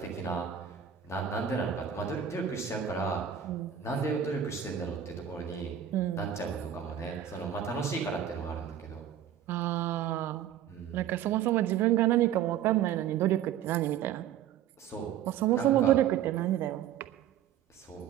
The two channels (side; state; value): left; quieter; 9.7 dB